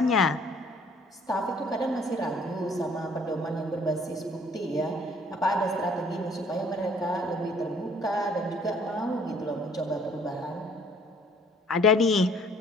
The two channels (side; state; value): both; normal; correlation 0.58